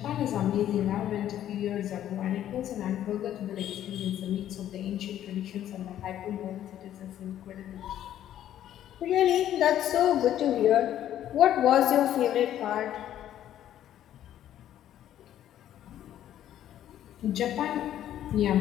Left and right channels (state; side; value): quieter; right; 11.5 dB